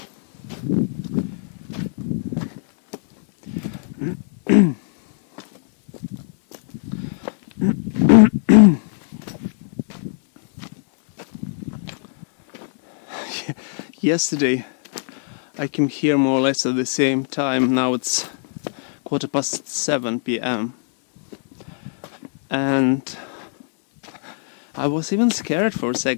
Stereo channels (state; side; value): silent; right; digital silence